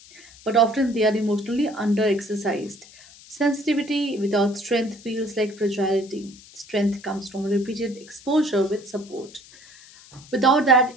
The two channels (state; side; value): noise; left; hiss, 22 dB below the sound